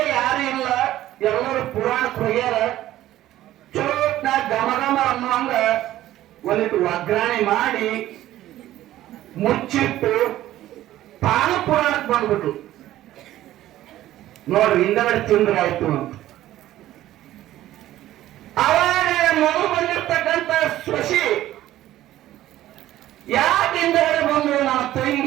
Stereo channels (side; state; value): left; quieter; 14.1 dB